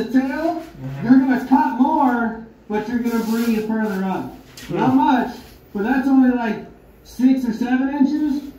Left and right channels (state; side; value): identical; both; correlation 1.00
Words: tail, you're going to cut more, but you're going to bring it further up. Not much, but that's only like 6 or 7 inches.